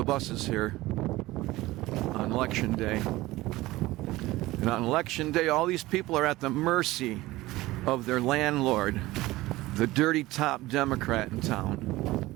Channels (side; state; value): left; quieter; 18.5 dB